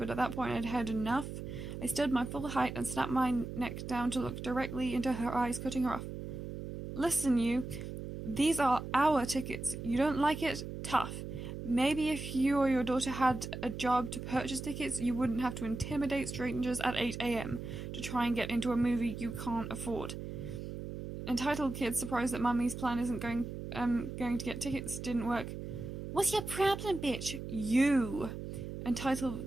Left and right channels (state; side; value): noise; right; hum, 8 dB below the sound